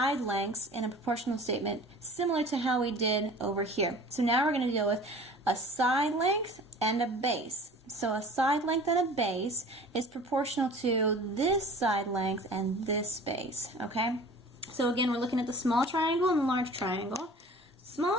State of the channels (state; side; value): normal; both; correlation 0.44